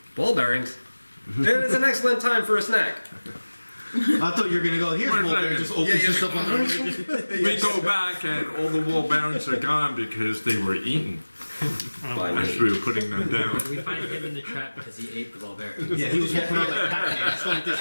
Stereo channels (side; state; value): both; inverted; correlation -1.00